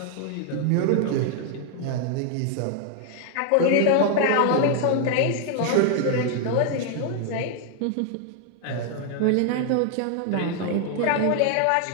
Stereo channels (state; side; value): different; both; correlation 0.00